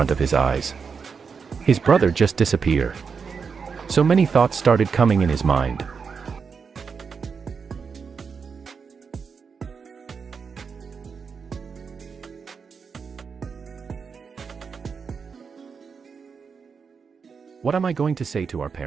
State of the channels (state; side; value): quieter; left; 5.7 dB